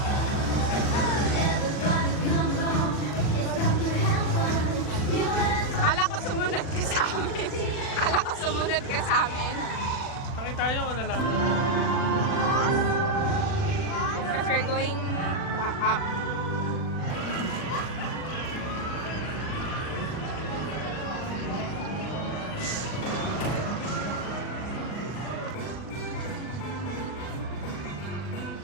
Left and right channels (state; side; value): late; right; 40 ms